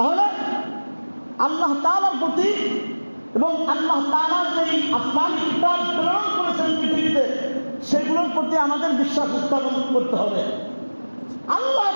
আল্লাহ তাআলার প্রতি এবং আল্লাহ তাআলা যে আসমানী কিতাব প্রেরণ করেছেন পৃথিবীতে, সেগুলোর প্রতি আমাদের বিশ্বাস স্থাপন করতে হবে। আল্লাহ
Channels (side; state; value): both; inverted; correlation -1.00